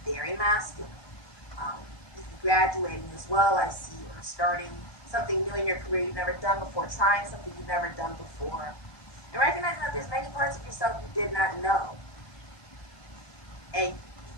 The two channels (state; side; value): late; right; 1.1 ms